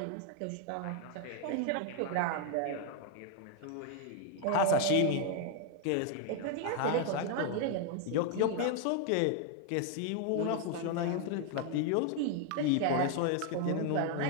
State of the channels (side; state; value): both; different; correlation 0.01